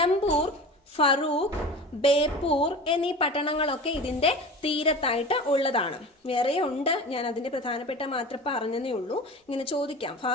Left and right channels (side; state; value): both; normal; correlation 0.34